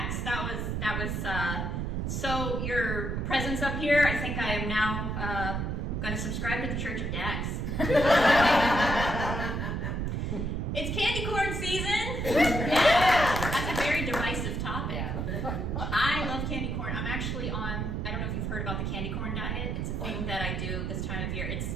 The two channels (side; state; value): right; noise; rumble, 1 dB below the sound